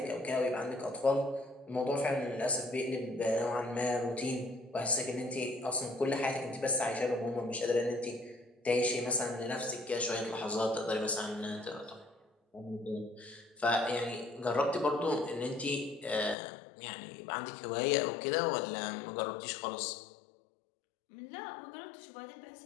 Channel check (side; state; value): right; drops out; at 16.4 s